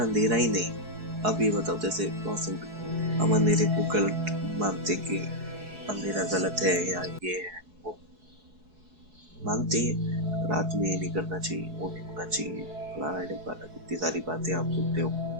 ही नहीं, अब ये बताओ, जैसे बहुत सिंपल, हम अंधेरे को गलत मानते कि अंधेरा गलत है या ये है वो मानते हैं, रात में ये नहीं करना चाहिए, वो नहीं होना चाहिए, फलाना ढिमकाना, कितनी सारी बातें आप सुनते हो।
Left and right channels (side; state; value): left; late; 4.7 ms